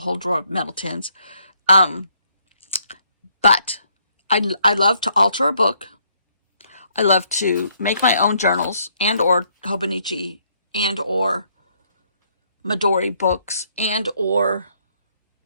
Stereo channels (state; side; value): inverted; both; correlation -0.69